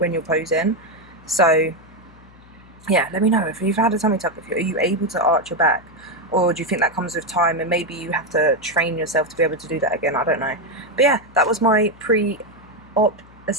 you're posing. So yeah, let me know if you've had a tummy tuck. Are you able to arch your back, or do you think that comes with time and maybe you have to train yourself to be able to do that again? I don't know. But yeah, that was my pre-op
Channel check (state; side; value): noise; left; hum, 24 dB below the sound